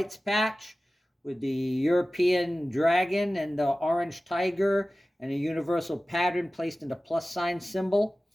patch with the European dragon and the orange tiger and a universal pattern placed in the plus sign symbol.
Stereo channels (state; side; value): normal; both; correlation 0.96